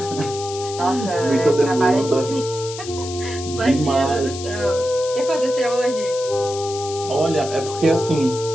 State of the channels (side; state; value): left; noise; hiss, 11 dB below the sound